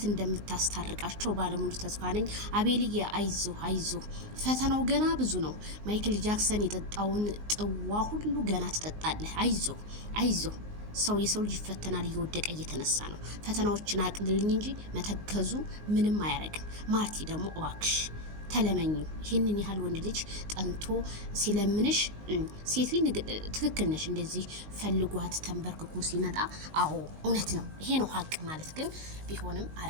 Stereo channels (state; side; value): late; left; 19 ms